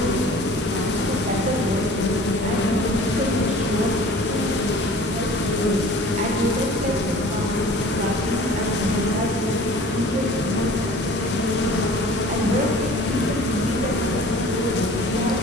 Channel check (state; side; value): normal; both; correlation 0.46